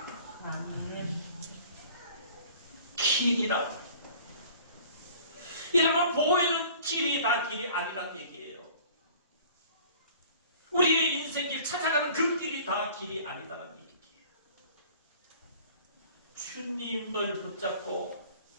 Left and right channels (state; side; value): inverted; both; correlation -0.49